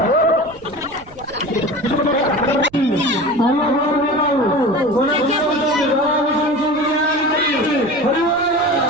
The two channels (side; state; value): right; noise; rumble, 24 dB below the sound